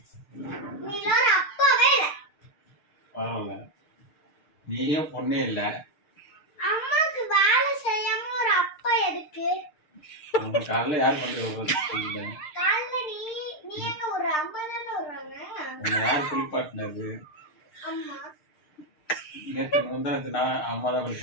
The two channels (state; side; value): late; right; 6.6 ms